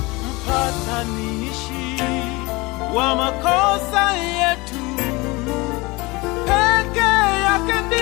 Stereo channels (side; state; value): right; quieter; 23.9 dB